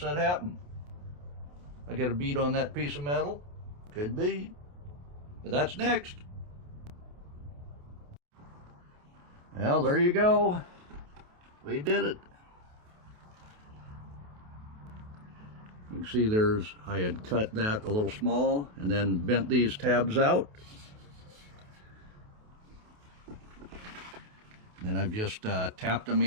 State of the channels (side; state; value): left; late; 28 ms